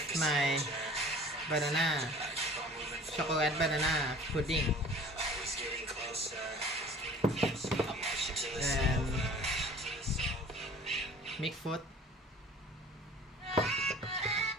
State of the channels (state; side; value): normal; both; correlation 0.47